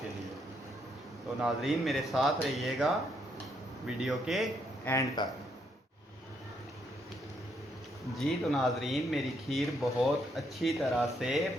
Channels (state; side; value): normal; both; correlation 0.74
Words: के लिए। तो नाजरीन मेरे साथ रहिएगा वीडियो के एंड तक। जी तो नाजरीन, मेरी खीर बहुत अच्छी तरह से